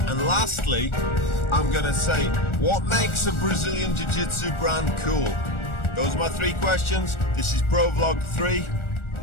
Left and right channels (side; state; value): right; late; 1.4 ms